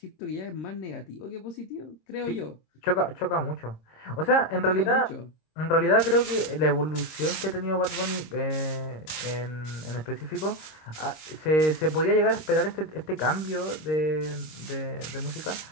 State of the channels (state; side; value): late; right; 25 ms